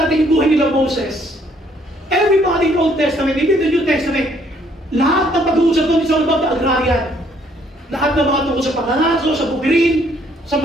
yung Old Testament, hindi the New Testament. Lahat ng pag-uusap doon is all about the agrarian. Lahat ng mga tungkol sa pangangaso, sa bukirin, sa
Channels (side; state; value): both; normal; correlation 0.66